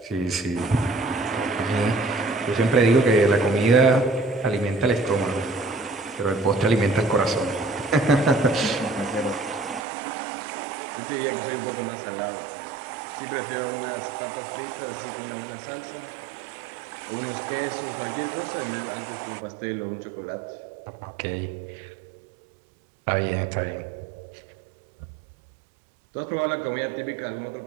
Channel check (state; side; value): drops out; left; at 9.8 s